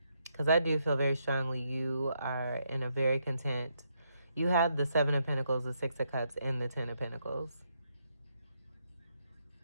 Because I do feel very strongly you are in a very content. You have the Seven of Pentacles, the Six of Cups, and the Ten of Pentacles.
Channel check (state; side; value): inverted; both; correlation -0.77